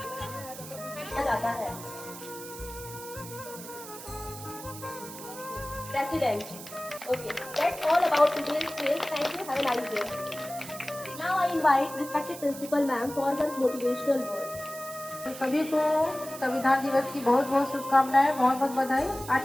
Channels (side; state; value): right; noise; hiss, 13 dB below the sound